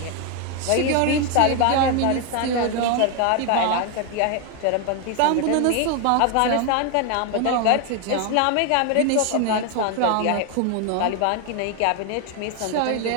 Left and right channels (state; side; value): different; both; correlation 0.01